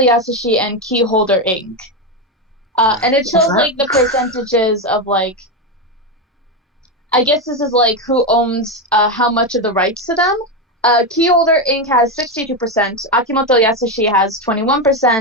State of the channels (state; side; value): normal; both; correlation 0.11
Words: Yasushi and Keyholder Inc. And it shows, like, the percentages of, like, I guess this is, like, who owns how much of the rights to them. Keyholder Inc. has 62%, Akimoto Yasushi has